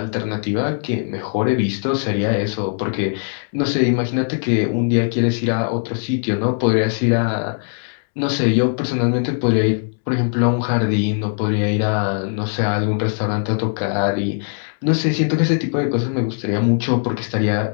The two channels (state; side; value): silent; right; digital silence